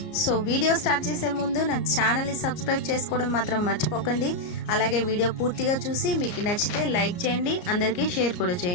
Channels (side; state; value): right; late; 34 ms